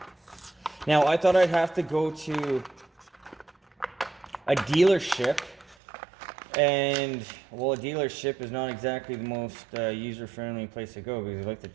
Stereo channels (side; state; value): left; drops out; at 5.8 s